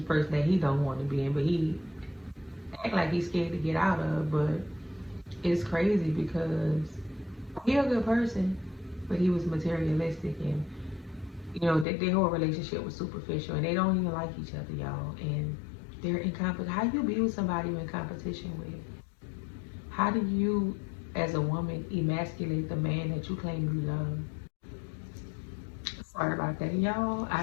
person that he don't want to be in, but he act like he's scared to get out of. But it's crazy because he a good person, but he was materialistic, and you know their whole relationship was superficial, and they don't even like each other, y'all. And they're in competition. How you be with somebody you're in competition with? How do you, as a woman, emasculate the man that you claim you love? Sorry about that, y'all. I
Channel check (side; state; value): right; drops out; at 11.9 s